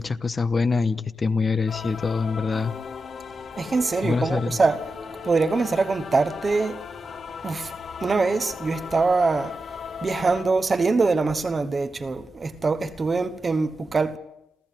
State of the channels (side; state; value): both; normal; correlation 0.90